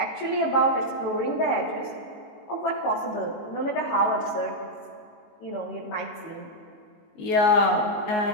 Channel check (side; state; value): right; late; 19 ms